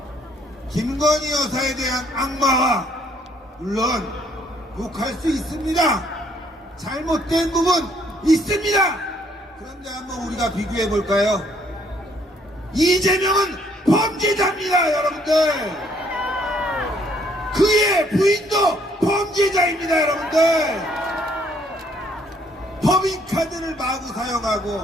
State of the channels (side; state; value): both; normal; correlation 0.66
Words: 김건희 여사에 대한 악마와, 물론 욕할 수 있습니다. 잘못된 부분 있습니다. 그런데 한번 우리가 비교해 볼까요? 이재명은 범죄자입니다, 여러분들. 그의 부인도 범죄자입니다, 여러분들. 법인카드를 마구